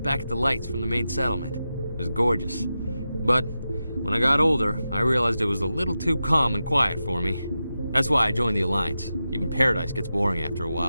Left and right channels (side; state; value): both; inverted; correlation -0.91